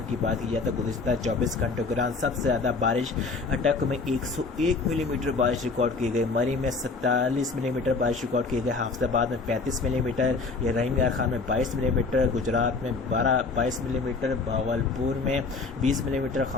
کی بات کی جائے تو گزشتہ 24 گھنٹوں کے دوران سب سے زیادہ بارش اٹک میں 101 ملی میٹر بارش ریکارڈ کی گئی، مری میں 47 ملی میٹر بارش ریکارڈ کی گئی، حافظ آباد میں 35 ملی میٹر، رحیم یار خان میں 22 ملی میٹر، گجرات میں 22 ملی میٹر، بھاولپور میں 20 ملی میٹر،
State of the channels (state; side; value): quieter; right; 4.1 dB